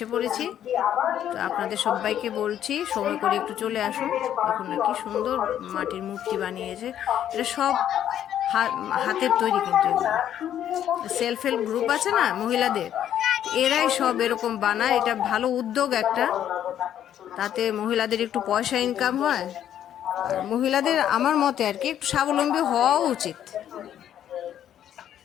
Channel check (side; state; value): right; quieter; 10.5 dB